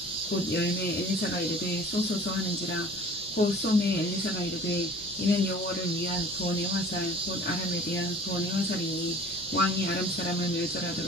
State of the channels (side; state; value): both; normal; correlation 0.47